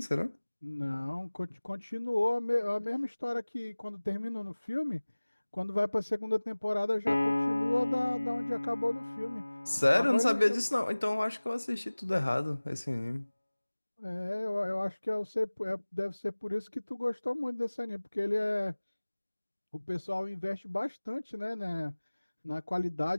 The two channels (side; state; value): both; inverted; correlation -1.00